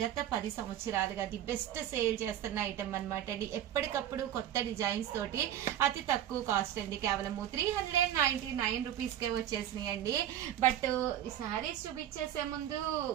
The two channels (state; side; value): quieter; left; 11.4 dB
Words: గత 10 సంవత్సరాలుగా ది బెస్ట్ సేల్ చేస్తున్న ఐటమ్ అన్నమాట అండి. ఎప్పటికప్పుడు కొత్త డిజైన్స్ తోటి అతి తక్కువ కాస్ట్ అండి. కేవలం 399 రూపీస్ కే వచ్చేసినాయి అండి. బట్ ఈ సారీస్ చూపించేసే ముందు